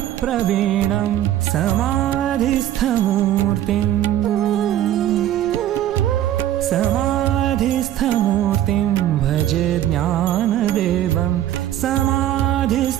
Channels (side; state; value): left; quieter; 12.1 dB